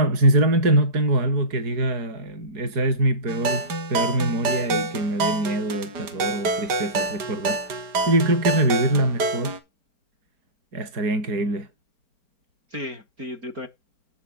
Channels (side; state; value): left; late; 4.4 ms